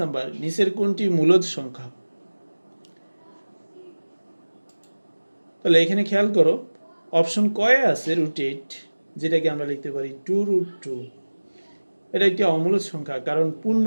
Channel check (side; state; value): both; inverted; correlation -1.00